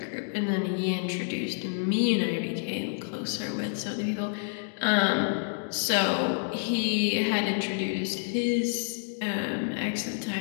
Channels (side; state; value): right; silent; digital silence